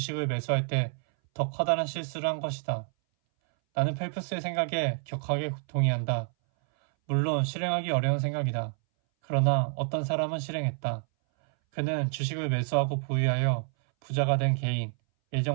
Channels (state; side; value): silent; left; 59 dB below the other